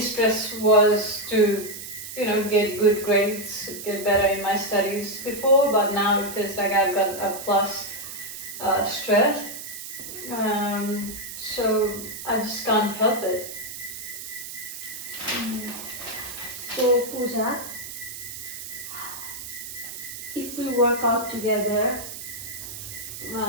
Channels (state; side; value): noise; right; hiss, 10 dB below the sound